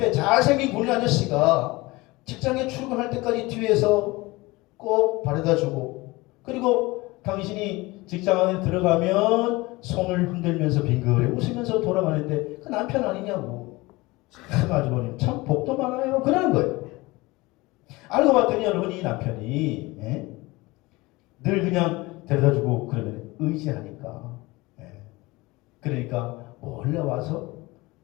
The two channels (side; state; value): right; quieter; 22.0 dB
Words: 잘생긴 군인 아저씨가 직장에 출근할 때까지 뒤에서 꼭 바래다주고 그리고 당신이 직장 안에 들어가면 손을 흔들면서 빙그레 웃으면서 돌아가는데 그 남편 아니냐고. 참 아주머니 참 복도 많아요. 그러는 거예요. 알고 봤더니 여러분 이 남편이 늘 그냥 데려다주고 그러면 의지하니까 그러니까 몰래 와서